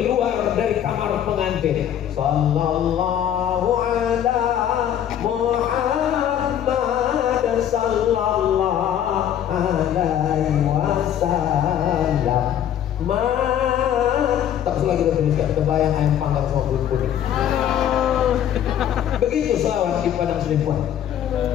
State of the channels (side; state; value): right; quieter; 10.2 dB